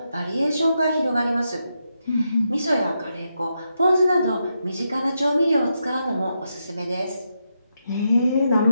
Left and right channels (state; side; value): inverted; both; correlation -0.84